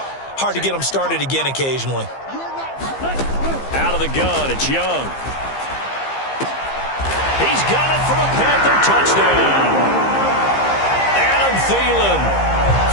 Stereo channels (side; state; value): right; late; 15 ms